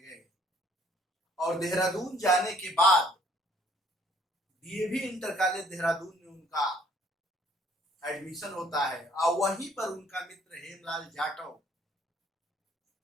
और देहरादून जाने के बाद डीएवी इंटर कॉलेज देहरादून में उनका एडमिशन होता है और वहीं पर उनका मित्र हेमलाल जाटव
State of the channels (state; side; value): normal; both; correlation 0.61